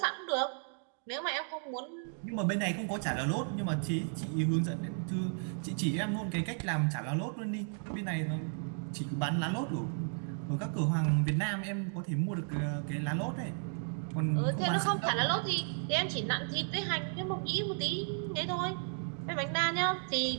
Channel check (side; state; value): left; silent; 55 dB below the other